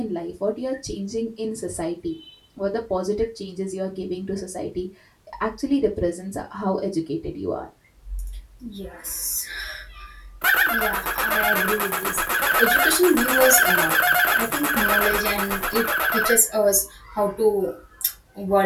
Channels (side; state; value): both; identical; correlation 1.00